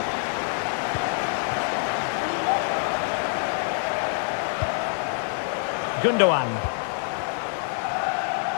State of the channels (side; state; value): right; silent; 60 dB below the other